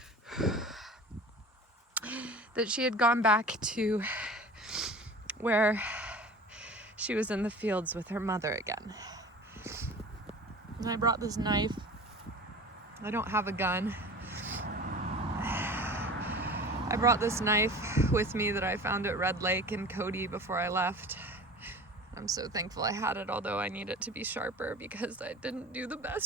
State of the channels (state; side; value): normal; both; correlation 0.39